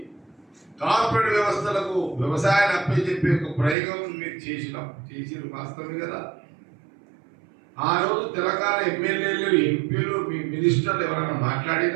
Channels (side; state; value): left; drops out; at 3.8 s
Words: కార్పొరేట్ వ్యవస్థలకు వ్యవసాయాన్ని అప్పచెప్పే ఒక ప్రయోగం మీరు చేసిన వాస్తవమే కదా. ఆ రోజు తెలంగాణ ఎమ్మెల్యేలు, ఎంపీలు, మీ మినిస్టర్లు ఎవరైనా